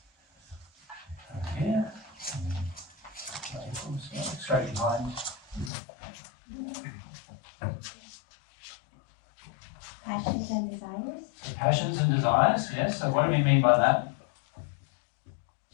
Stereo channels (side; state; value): right; drops out; at 5.7 s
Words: Here. Straight behind. Passions and desires? The passions and desires, yes. So what do we mean by that?